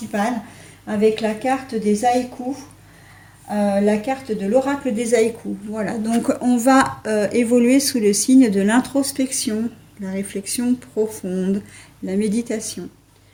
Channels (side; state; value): both; identical; correlation 1.00